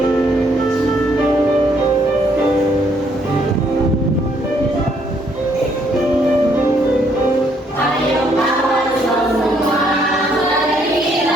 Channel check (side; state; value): both; normal; correlation 0.69